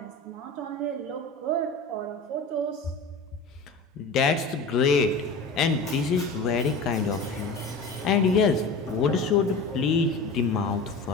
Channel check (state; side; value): quieter; right; 3.4 dB